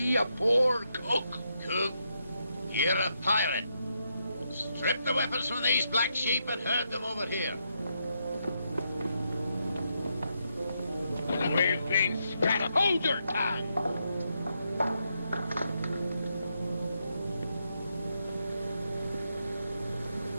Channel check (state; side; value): inverted; both; correlation -0.81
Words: a poor cook? Cook, you're a pirate. Strip the weapons from these black sheep and herd them over here. We've been scattered. Hold your tongue!